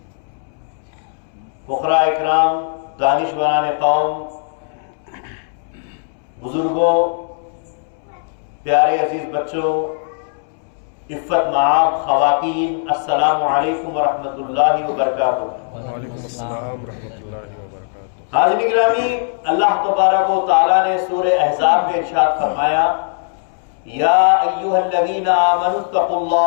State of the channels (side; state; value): right; silent; 67 dB below the other